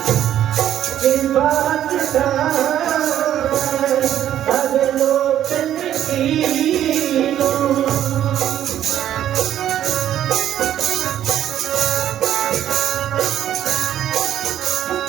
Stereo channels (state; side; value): quieter; left; 11.2 dB